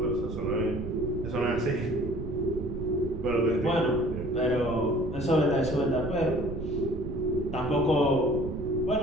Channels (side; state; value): right; noise; rumble, 7 dB below the sound